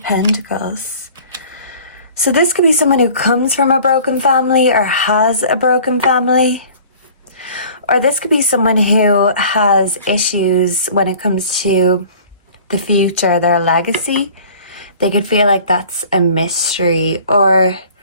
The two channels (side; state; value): both; inverted; correlation -0.47